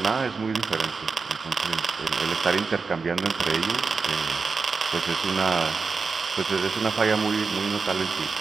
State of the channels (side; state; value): left; quieter; 4.7 dB